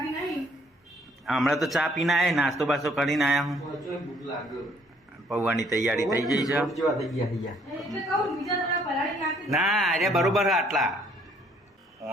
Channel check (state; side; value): normal; both; correlation 0.63